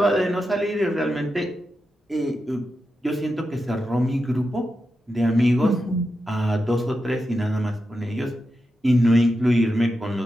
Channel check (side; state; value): both; normal; correlation 0.89